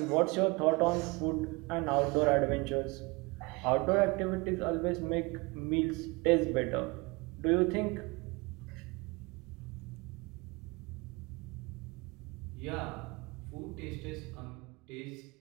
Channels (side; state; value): left; quieter; 26.3 dB